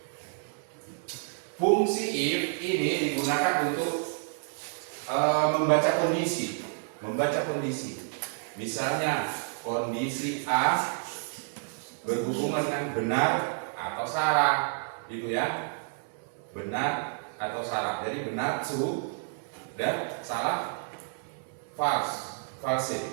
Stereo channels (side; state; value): left; silent; 58 dB below the other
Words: fungsi if ini digunakan untuk membaca kondisi. Misalnya kondisi A berhubungan dengan benar atau salah, gitu ya. Benar atau salah. Jadi benar true dan salah false.